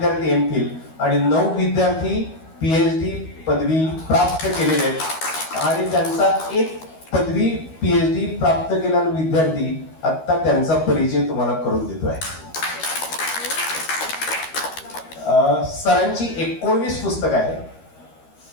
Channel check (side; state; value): right; late; 13 ms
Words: एमफिल आणि 9 विद्यार्थी पीएचडी पदवी प्राप्त केलेले आहेत आणि त्यांचा एक पदवी पीएचडी प्राप्त केलेला विद्यार्थी आता त्यांचा परिचय तुम्हाला करून देतो आहे. सरांची 19 पुस्तकं आहेत,